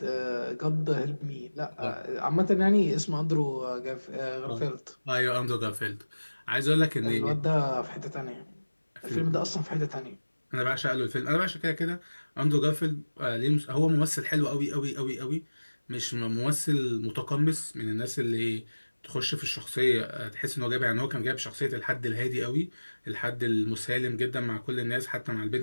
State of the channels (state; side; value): inverted; both; correlation -1.00